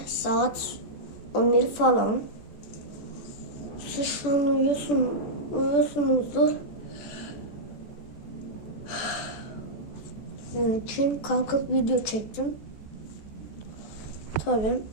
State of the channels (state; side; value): late; right; 14 ms